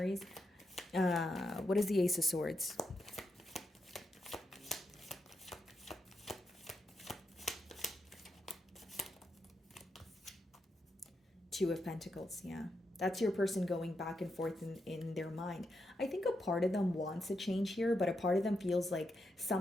What is the Ace of Swords? Two of Pentacles, yeah. That's your person going back and forth in their mind. I think a part of them wants a change here, but a part of them feels like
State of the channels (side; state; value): both; normal; correlation 0.84